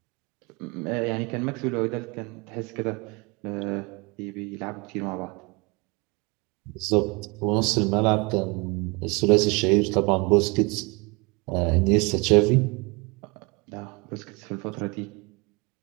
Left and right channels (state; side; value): quieter; left; 28.2 dB